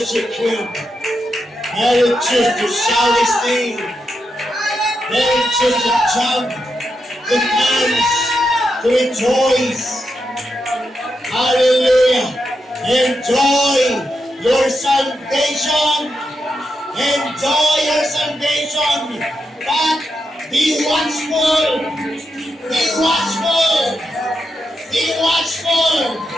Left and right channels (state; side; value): normal; both; correlation 0.85